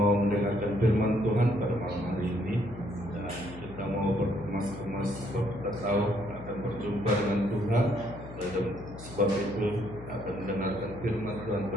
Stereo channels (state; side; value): noise; left; hum, 14 dB below the sound